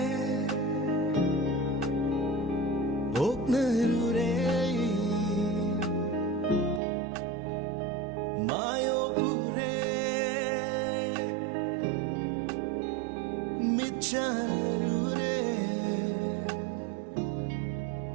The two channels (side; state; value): left; drops out; at 6.8 s